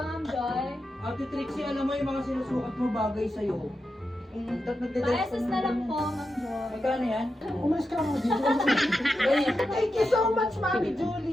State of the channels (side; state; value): both; normal; correlation 0.88